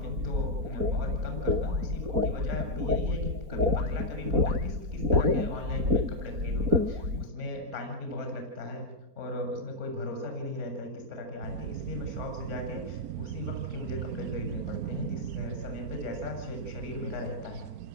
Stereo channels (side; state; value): left; late; 4.1 ms